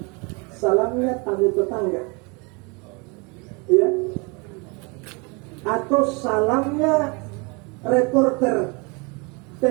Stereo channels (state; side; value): quieter; left; 30.4 dB